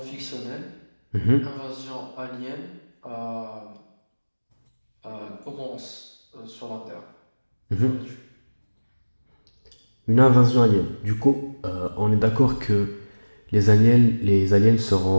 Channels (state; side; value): inverted; both; correlation -1.00